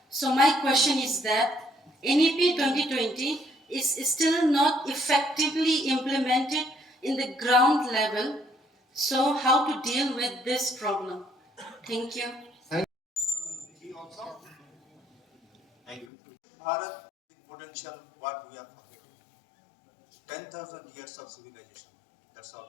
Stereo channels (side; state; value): right; drops out; at 16.1 s